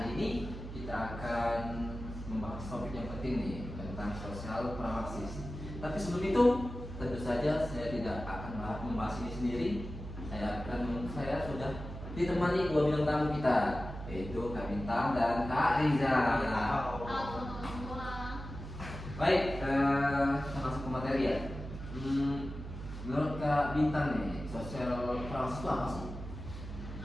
ini kita akan membahas topik yang penting nih tentang sosial pramaksis. Tapi sebelum itu, tentu saja saya tidak akan membahas ini sendiri. Saya sudah ditemani dua bintang tamu kita, yaitu Kak Bintang dan Kak Riza. Halo teman-teman semua. Baik, kita masuk ke materi ya. Menurut Kak Bintang nih, sosial pramaksis itu apa sih?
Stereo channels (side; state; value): right; noise; hum, 9 dB below the sound